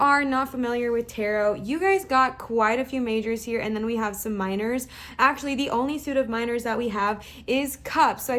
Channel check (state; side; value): identical; both; correlation 1.00